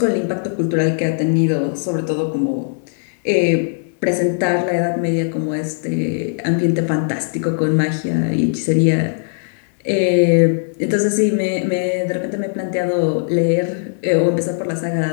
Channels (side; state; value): right; silent; digital silence